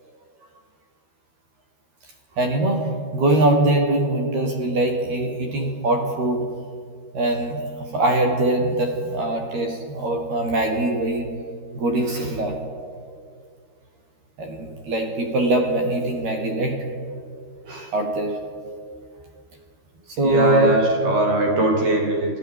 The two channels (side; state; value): left; late; 13 ms